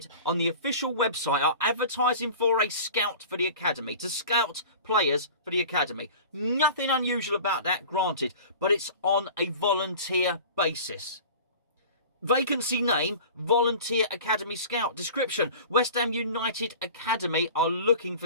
on the official website are advertising for a scout for the academy, to scout players for the academy. Nothing unusual about that, granted, but it's on a volunteer basis. Vacancy name, Volunteer Academy Scout. Description, West Ham United Academy are looking for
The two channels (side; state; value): both; inverted; correlation -0.40